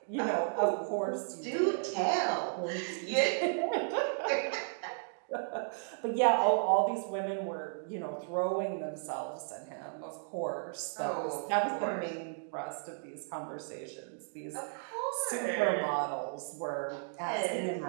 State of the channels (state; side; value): silent; left; digital silence